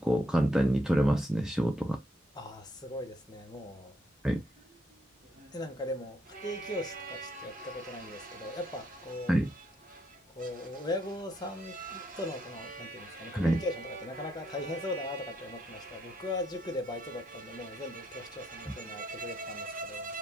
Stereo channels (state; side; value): normal; both; correlation 0.74